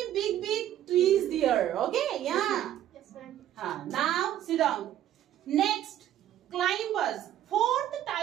big trees there. Okay, yeah. Yes, ma'am. Now sit down. Next, climbers. Fourth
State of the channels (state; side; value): quieter; left; 11.9 dB